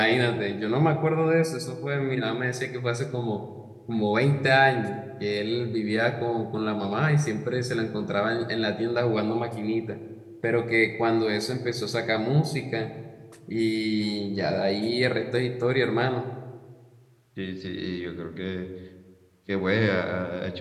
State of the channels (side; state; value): both; identical; correlation 1.00